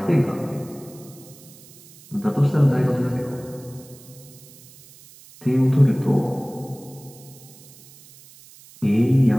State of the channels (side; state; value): right; noise; hiss, 22 dB below the sound